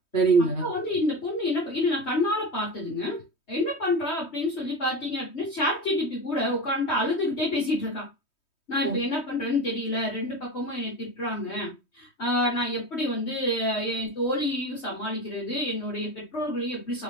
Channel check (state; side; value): late; right; 3.2 ms